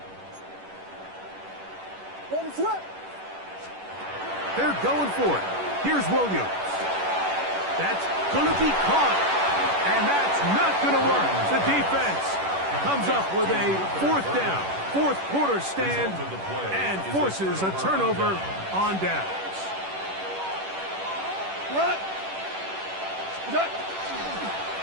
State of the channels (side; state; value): left; late; 11 ms